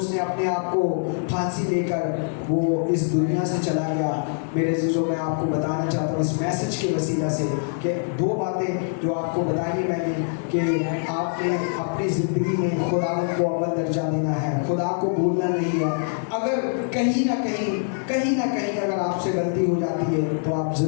अपने आप को फांसी देकर वो इस दुनिया से चला गया। मेरे अज़ीज़ों, मैं आपको बताना चाहता हूँ इस मैसेज के वसीला से कि दो बातें जो आपको बताई मैंने कि आपने अपनी ज़िंदगी में खुदा को अव्वल दर्जा देना है, खुदा को भूलना नहीं है। अगर कहीं ना कहीं अगर आपसे गलती हो जाती है तो आप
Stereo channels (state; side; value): silent; right; 59 dB below the other